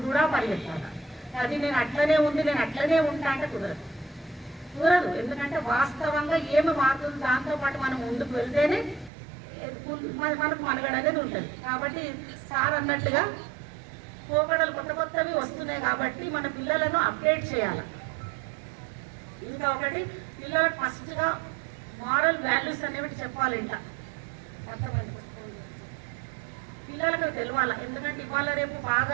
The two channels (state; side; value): drops out; left; at 9.1 s